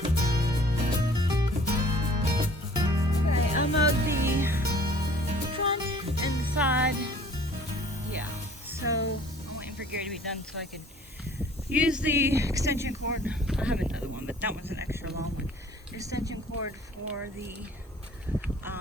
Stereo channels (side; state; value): both; normal; correlation 0.52